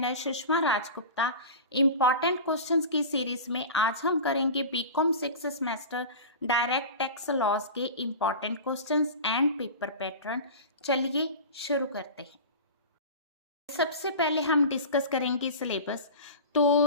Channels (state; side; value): inverted; both; correlation -0.32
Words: Sushma Rajgupta. Important questions की सीरीज में आज हम करेंगे BCom 6 semester direct tax laws के important questions and paper pattern. चलिए शुरू करते हैं। सबसे पहले हम डिस्कस करेंगे सिलेबस। तो